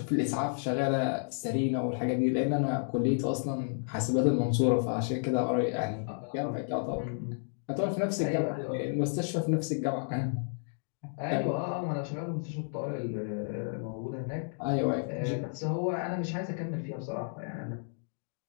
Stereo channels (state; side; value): silent; right; digital silence